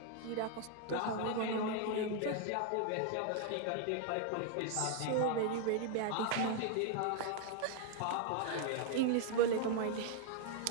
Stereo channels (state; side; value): different; both; correlation 0.00